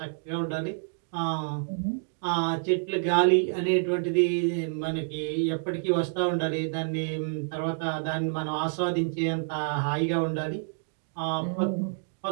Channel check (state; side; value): silent; left; digital silence